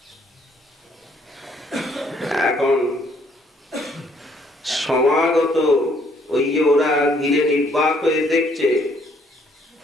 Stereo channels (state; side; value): normal; both; correlation 0.65